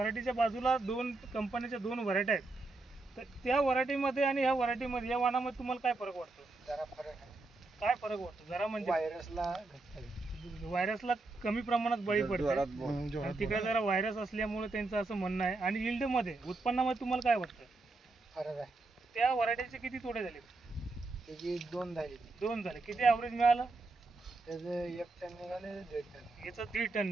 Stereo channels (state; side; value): quieter; left; 3.3 dB